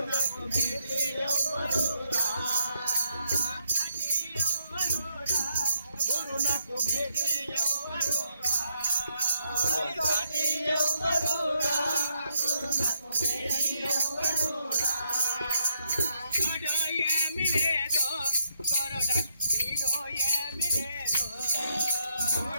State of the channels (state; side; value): inverted; both; correlation -0.76